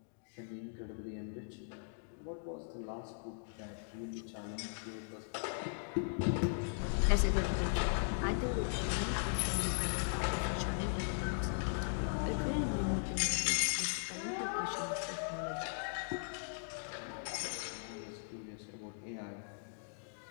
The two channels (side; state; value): right; silent; digital silence